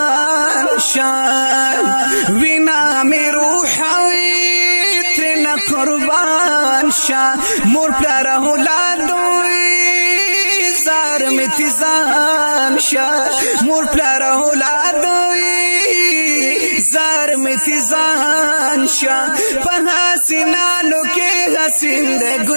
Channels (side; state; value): both; inverted; correlation -1.00